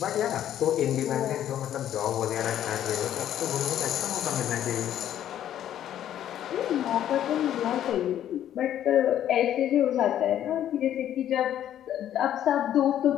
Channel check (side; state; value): right; quieter; 11.1 dB